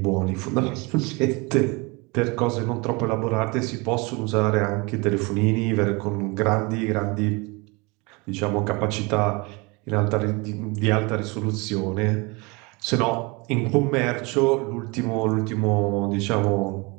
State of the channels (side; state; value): left; quieter; 27.2 dB